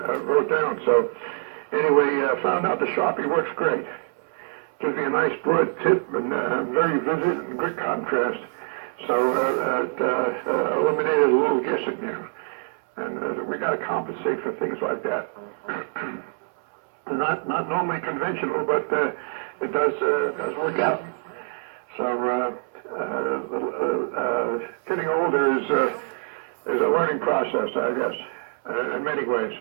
wrote down. So anyway, found out the Sharpie works great. Gives me a nice broad tip and very vivid and good contrast. So it eliminated a little guessing there. And we got to compensate for things like that. Not normally conventional, but it does work out. So getting older is a learning process, I guess, in many ways.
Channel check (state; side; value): silent; left; 62 dB below the other